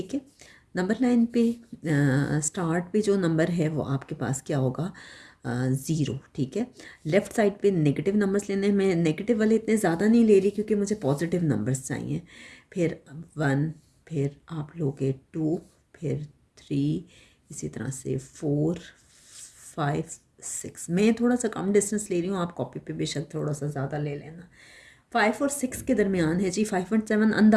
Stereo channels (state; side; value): identical; both; correlation 1.00